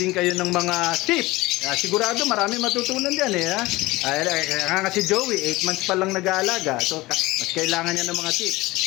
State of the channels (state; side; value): quieter; right; 20.0 dB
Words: kayo ng mga tips. Sigurado marami matutunan diyan eh. Kaya nga si Joey, 8 months pa lang nag-aalaga. So mas kailangan niya ng mga tips.